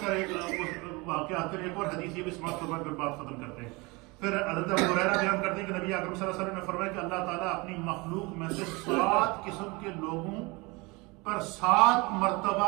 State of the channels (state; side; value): quieter; left; 25.7 dB